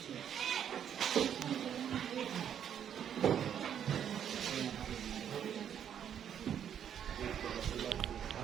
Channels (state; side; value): quieter; left; 9.0 dB